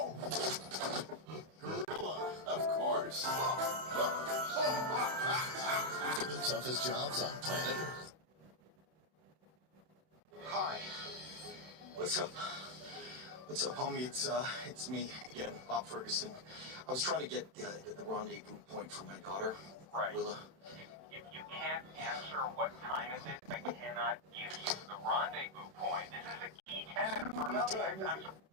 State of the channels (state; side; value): late; left; 31 ms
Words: Gorilla, of course. The toughest jobs on planet Earth. Hi. What's up? What's up, homie? It's me again, Bob Ferguson. I was trying to get the rendezvous point for my daughter, right. Willa. You can't answer what time it is. I cannot give you the rendezvous point. This is a key tenet for Netflix.